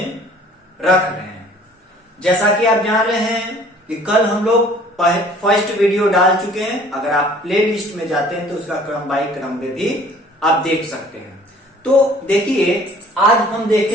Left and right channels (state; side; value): normal; both; correlation 0.53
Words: रख रहे हैं। जैसा कि आप जान रहे हैं कि कल हम लोग फर्स्ट वीडियो डाल चुके हैं। अगर आप प्ले लिस्ट में जाते हैं तो उसका क्रम बाई क्रम में भी आप देख सकते हैं। तो देखिए, आज हम